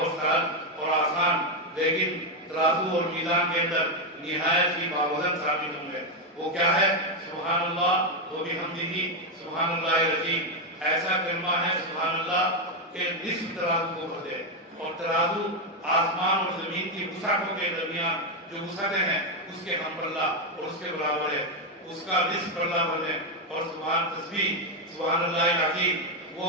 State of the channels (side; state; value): both; normal; correlation 0.05